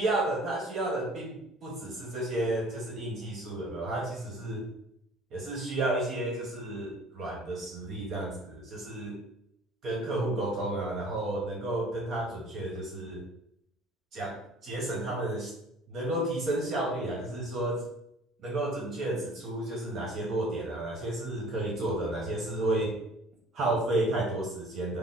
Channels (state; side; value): normal; both; correlation 0.49